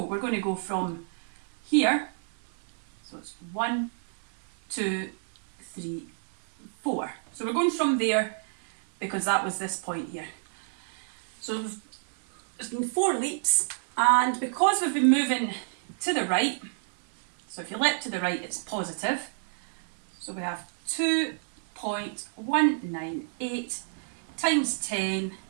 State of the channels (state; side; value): silent; left; 58 dB below the other